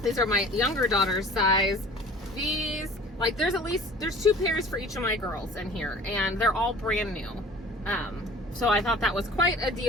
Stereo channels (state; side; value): normal; both; correlation 0.46